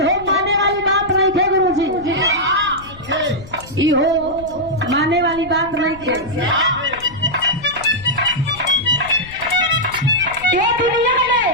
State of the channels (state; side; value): noise; left; rumble, 18 dB below the sound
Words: माने वाली बात नहीं थे गुरुजी, इहो माने वाली बात नहीं थे। ये दुनिया में